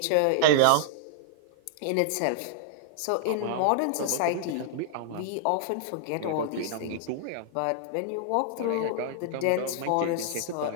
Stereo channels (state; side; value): different; both; correlation -0.01